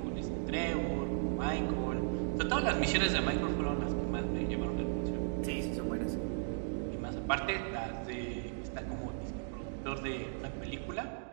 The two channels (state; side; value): silent; left; digital silence